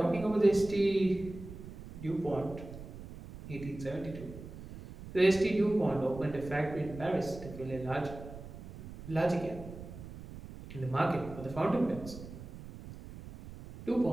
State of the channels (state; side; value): noise; right; rumble, 13 dB below the sound